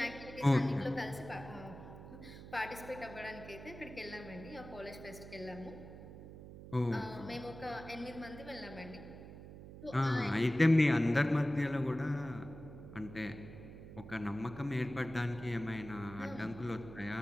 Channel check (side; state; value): right; noise; hum, 14 dB below the sound